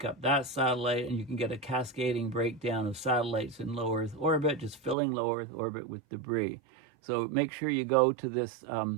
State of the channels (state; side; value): drops out; left; at 5.0 s